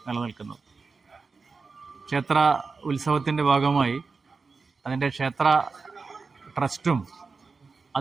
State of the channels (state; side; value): quieter; left; 4.5 dB